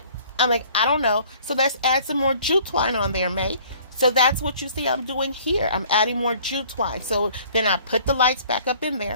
I'm like, I don't know. So let's add some more jute twine on there, May. So that's what you see I'm doing here. I'm adding more jute twine. So then I put the lights back up in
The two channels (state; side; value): inverted; both; correlation -0.54